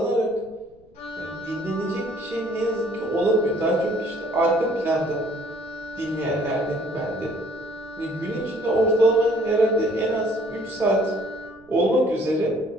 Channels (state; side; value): noise; right; rumble, 30 dB below the sound